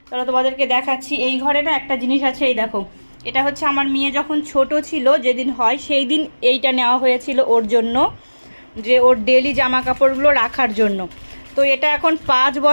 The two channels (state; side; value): inverted; both; correlation -1.00